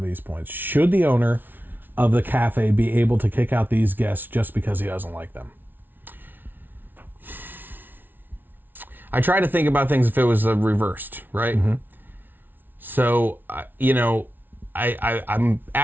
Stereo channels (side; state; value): left; late; 0.092 ms